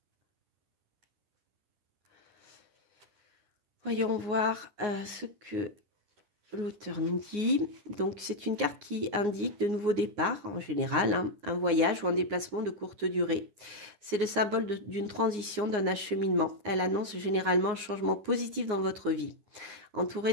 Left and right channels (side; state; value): left; late; 9.6 ms